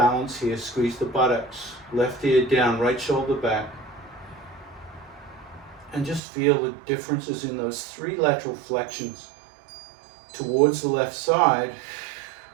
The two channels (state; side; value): drops out; left; at 6.2 s